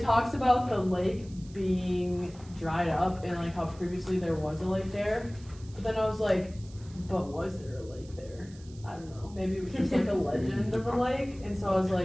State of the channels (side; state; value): right; noise; hiss, 24 dB below the sound